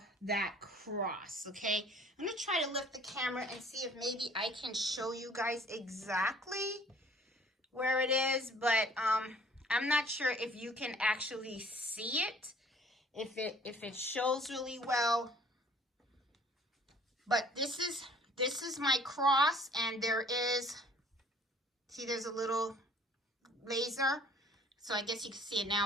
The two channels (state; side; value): normal; both; correlation 0.54